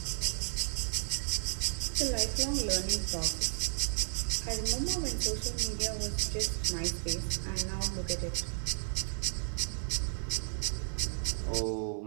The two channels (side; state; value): left; silent; 55 dB below the other